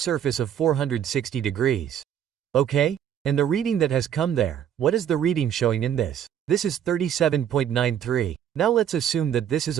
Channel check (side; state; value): left; quieter; 9.5 dB